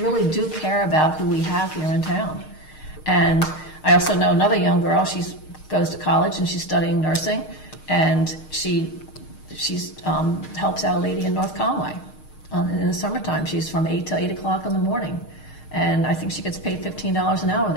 do care about who we have here in town. And I also know another young girl. She goes to college and she's studying nursing, and she helps out a lady in North Conway in the summertime. She's from 8 to 8 o'clock in the morning. And I think she gets paid $15 an hour.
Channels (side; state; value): right; late; 6.5 ms